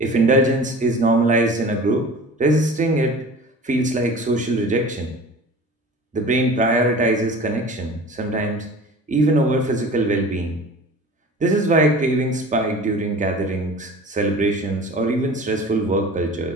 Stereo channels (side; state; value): both; normal; correlation 0.40